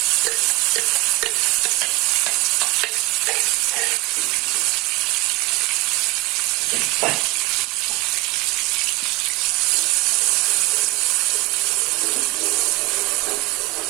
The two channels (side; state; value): left; quieter; 23.6 dB